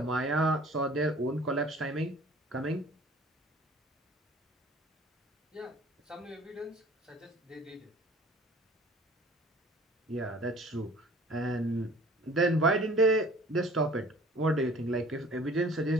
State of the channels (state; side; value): normal; both; correlation 0.49